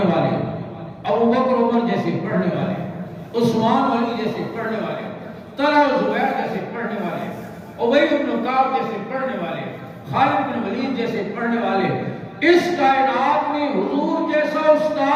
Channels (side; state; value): both; identical; correlation 1.00